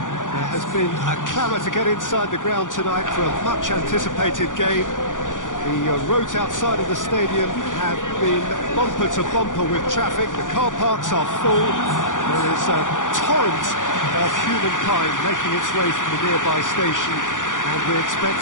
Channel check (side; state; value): right; late; 0.87 ms